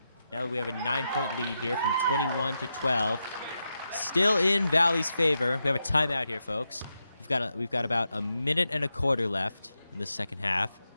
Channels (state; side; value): inverted; both; correlation -0.87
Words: now we have a 9-point lead here from 21-12. Still in Valley's favor. We have a timeout here, folks. We've got about a minute and a quarter left in the